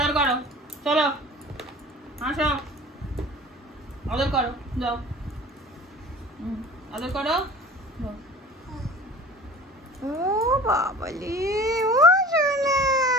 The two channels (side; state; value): both; normal; correlation 0.42